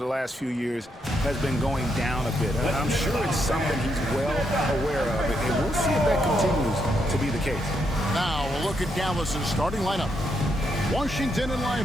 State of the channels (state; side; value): normal; both; correlation 0.79